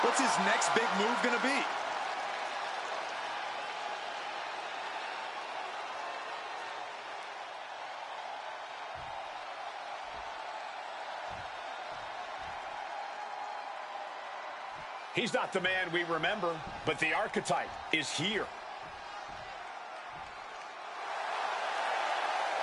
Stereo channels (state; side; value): identical; both; correlation 1.00